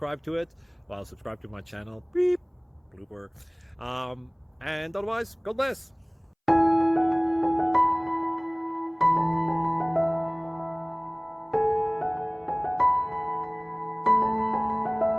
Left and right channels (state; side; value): identical; both; correlation 1.00